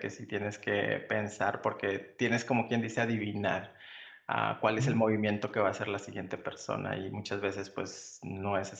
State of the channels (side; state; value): both; identical; correlation 1.00